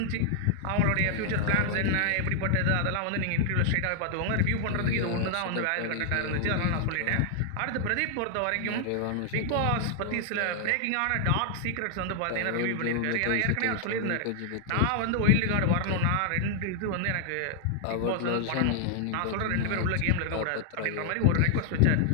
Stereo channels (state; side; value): different; both; correlation 0.00